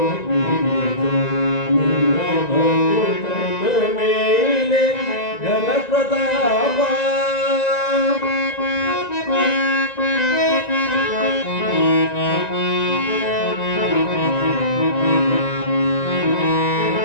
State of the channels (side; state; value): right; late; 1.9 ms